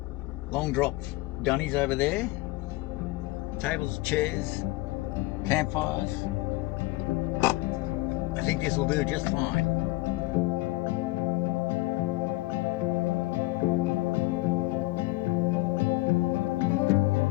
Long drop dunnies over there, tables, chairs, campfires. I think this will do just fine.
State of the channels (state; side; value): quieter; right; 20.3 dB